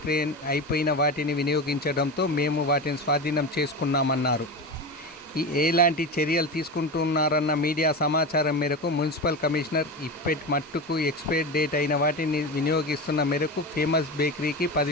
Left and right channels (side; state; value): both; normal; correlation 0.23